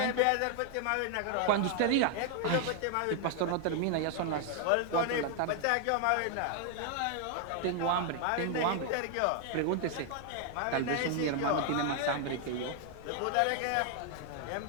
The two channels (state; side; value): different; both; correlation 0.00